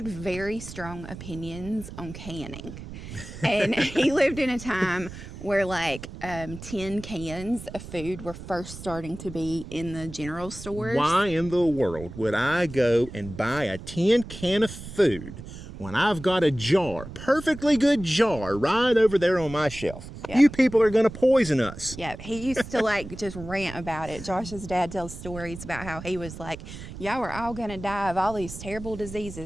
very strong opinions on canning. And he lived in a time where like tin cans of food were first starting to be in the general stores. Why in the world would I go and buy a tin can of food when I've got a jar, perfectly good jar, right over there on my shelf? Yep. You people are going to poison us. Yeah, he used to like just rant about it. Josh's dad tells stories about how he was like, y'all are all going to die of all these terrible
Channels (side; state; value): right; noise; rumble, 12 dB below the sound